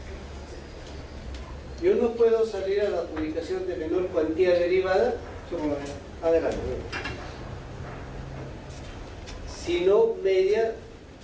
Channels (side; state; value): both; identical; correlation 1.00